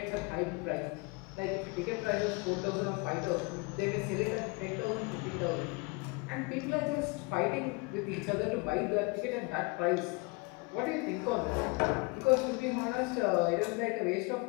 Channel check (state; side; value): quieter; right; 27.8 dB